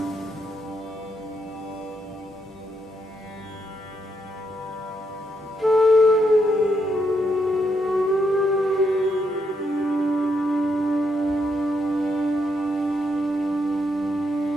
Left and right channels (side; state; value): both; normal; correlation 0.78